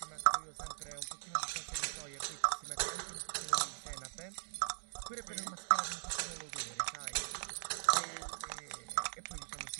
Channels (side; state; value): left; silent; digital silence